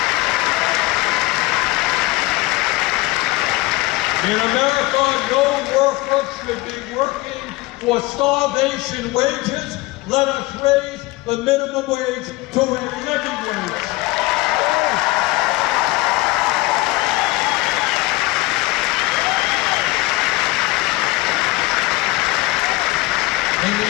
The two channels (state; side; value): quieter; right; 20.8 dB